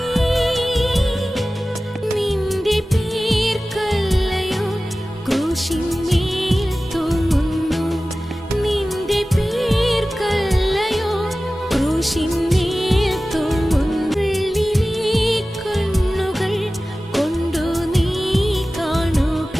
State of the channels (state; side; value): normal; both; correlation 0.96